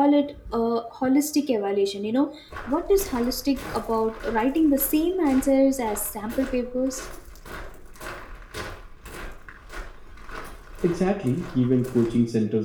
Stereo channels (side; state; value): both; identical; correlation 1.00